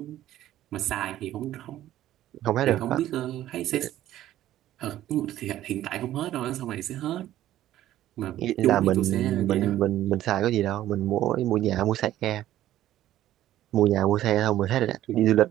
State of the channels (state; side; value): quieter; left; 13.3 dB